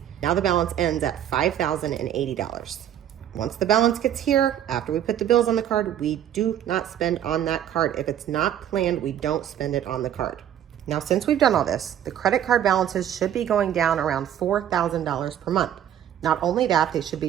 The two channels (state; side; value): quieter; left; 10.6 dB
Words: Now the balance ends at $5,080. Once the balance gets here, after we put the bills on the card, we do not spend on that card. If it's not planned, we don't spend it on the card. Now, since we've done all this, the credit card balances should be going down around $4,000 per month. Not only that, they should